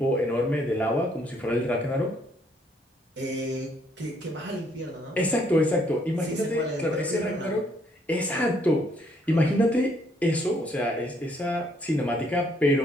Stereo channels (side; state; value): both; normal; correlation 0.68